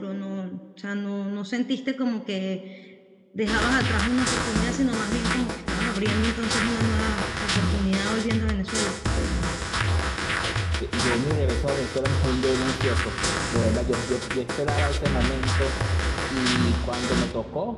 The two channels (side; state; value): both; identical; correlation 1.00